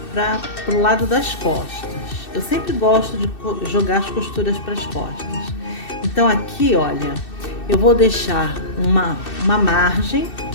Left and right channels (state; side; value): late; right; 2.6 ms